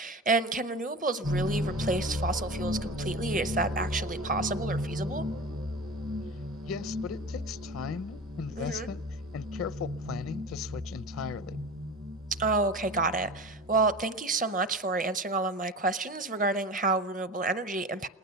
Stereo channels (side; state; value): both; normal; correlation 0.33